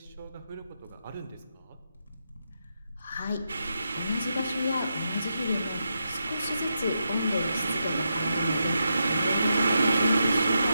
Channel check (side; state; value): both; inverted; correlation -0.85